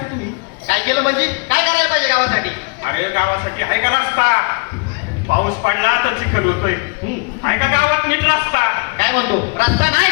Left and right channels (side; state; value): right; quieter; 33.3 dB